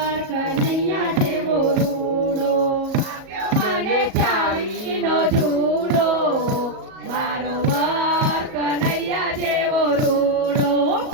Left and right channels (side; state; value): left; late; 37 ms